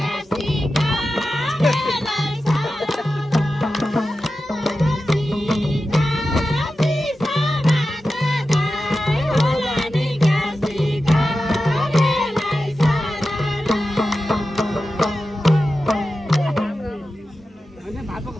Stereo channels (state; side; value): normal; both; correlation 0.92